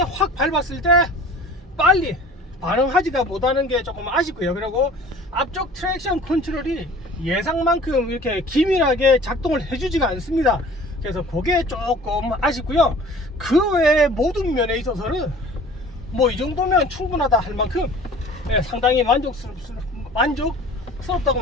확 밟았을 때 빨리 반응하지가 못하는 게 조금 아쉽고요. 그리고 앞쪽 트랙션 컨트롤이 예상만큼 이렇게 기밀하게 작동을 해주지가 않습니다. 그래서 그게 조금 아쉽고요. 그 외에 모든 면에 있어서는 뭐 이 정도면 충분하다 할 만큼 상당히 만족스럽다고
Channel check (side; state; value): both; normal; correlation 0.46